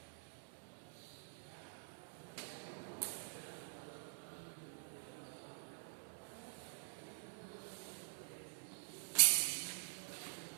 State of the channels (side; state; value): left; silent; digital silence